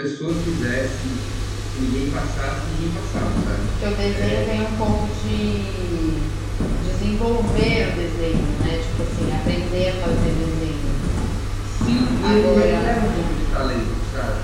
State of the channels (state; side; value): identical; both; correlation 1.00